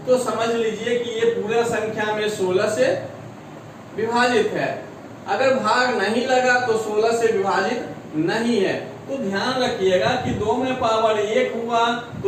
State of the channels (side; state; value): both; identical; correlation 1.00